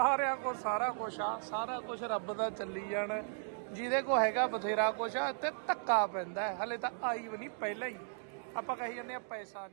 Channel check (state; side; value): silent; left; digital silence